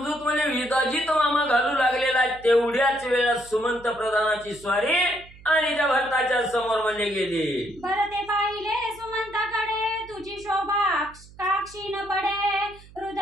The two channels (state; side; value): noise; right; hum, 22 dB below the sound